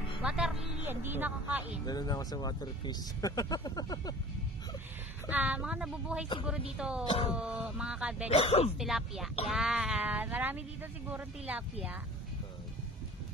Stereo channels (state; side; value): normal; both; correlation 0.43